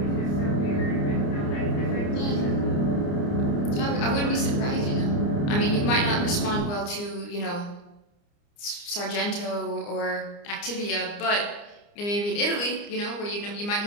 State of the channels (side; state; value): right; late; 29 ms